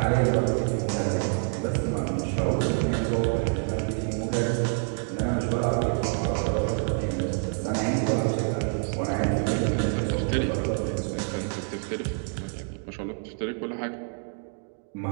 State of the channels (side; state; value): left; silent; 56 dB below the other